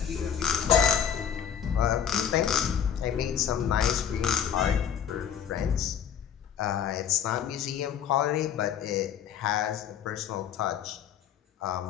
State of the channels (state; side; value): quieter; right; 8.8 dB